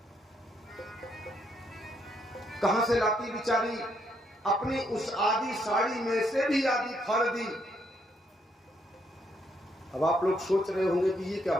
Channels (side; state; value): both; normal; correlation 0.74